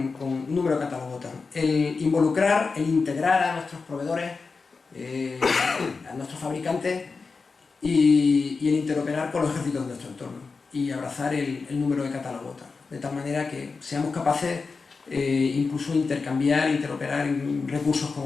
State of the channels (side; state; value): right; quieter; 4.5 dB